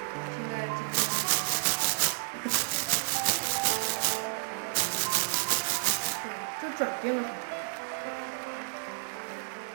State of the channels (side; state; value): left; silent; digital silence